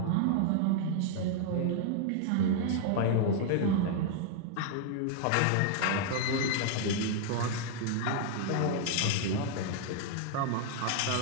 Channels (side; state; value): both; different; correlation 0.00